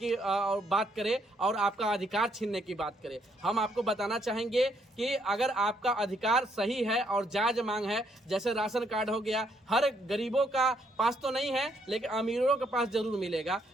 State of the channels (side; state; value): both; normal; correlation 0.72